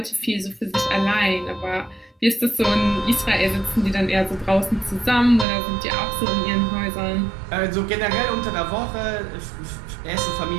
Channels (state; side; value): drops out; left; at 5.5 s